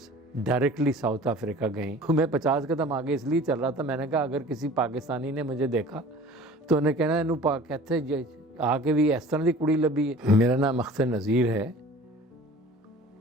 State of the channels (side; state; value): both; normal; correlation 0.44